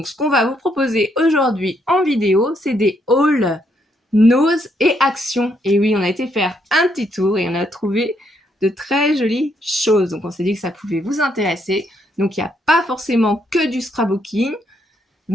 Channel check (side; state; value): both; normal; correlation 0.74